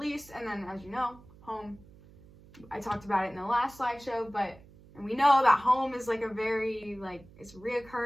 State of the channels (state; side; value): noise; right; hum, 23 dB below the sound